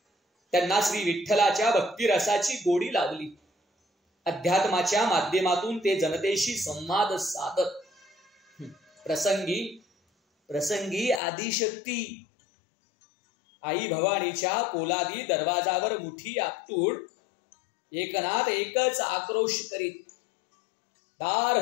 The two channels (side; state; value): right; drops out; at 11.2 s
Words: त्यांना श्री विठ्ठलाच्या भक्तिरसाची गोडी लावली. अध्यात्माच्या माध्यमातून ते जनतेशी संवाद साधत. प्रसंगी आदिशक्ती आई भवानीच्या पोलादी दरवाजावर मुठी आपटून एकनाथ एकच आक्रोश करीत, दार